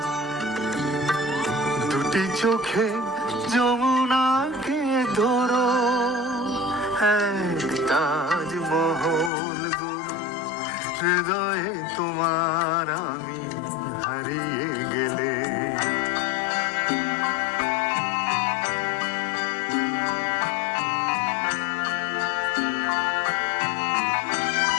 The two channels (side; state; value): right; drops out; at 9.3 s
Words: দুটি চোখে যমুনাকে ধরো, তাজমহল গড়ো হৃদয়ে তোমার, আমি হারিয়ে গেলে।